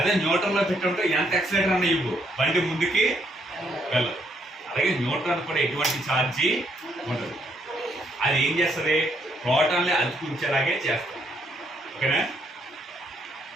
న్యూట్రల్లో పెట్టి ఉంటే ఎంత యాక్సిలేటర్ అన్న ఇవ్వు, బండి ముందుకి వెళ్ళదు. అలాగే న్యూట్రాన్ కూడా ఎటువంటి ఛార్జీ ఉంటుంది. అది ఏం చేస్తుంది? ప్రోటాన్ని అతుకుంచేలాగే చేస్తుంది. ఓకేనా?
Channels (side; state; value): both; normal; correlation 0.72